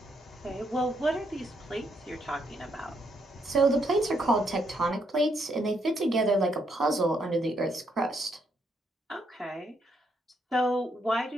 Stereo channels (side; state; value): both; normal; correlation 0.75